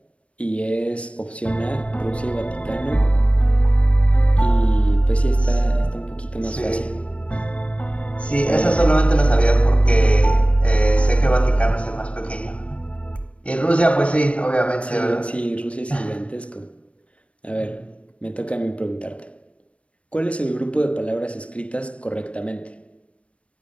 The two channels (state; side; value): late; right; 0.062 ms